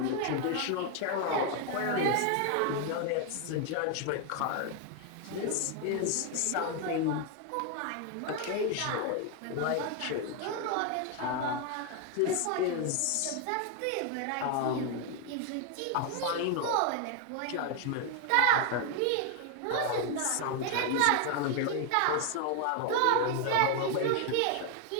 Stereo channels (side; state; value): both; different; correlation 0.01